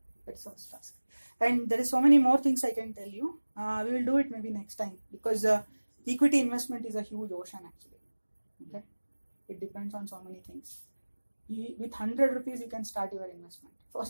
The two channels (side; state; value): both; inverted; correlation -1.00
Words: That's the first task. And there is so many more things I can tell you. We will do it maybe next time because equity investment is a huge ocean actually. Okay, it depends on so many things. With 100 rupees you can start your investment.